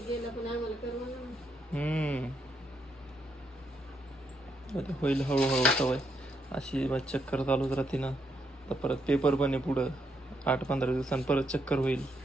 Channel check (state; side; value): normal; both; correlation 0.78